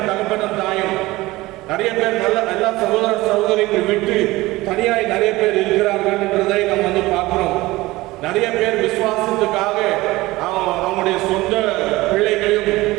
தகப்பனும் தாயும். நிறைய பேர் எல்லா சகோதர சகோதரிகள் விட்டு தனியாய் நிறைய பேர் இருக்கிறார்கள் என்றதை நம்ம வந்து பார்க்கிறோம். நிறைய பேர் விசுவாசத்துக்காக அவங்களுடைய சொந்த பிள்ளைகளையும்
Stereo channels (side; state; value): left; quieter; 19.4 dB